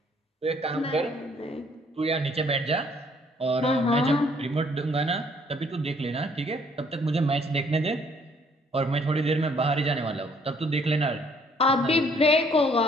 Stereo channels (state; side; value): normal; both; correlation 0.63